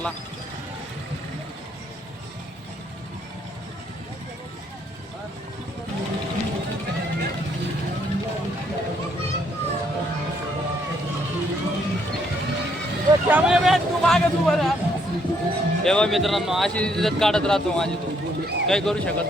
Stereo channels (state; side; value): normal; both; correlation 0.70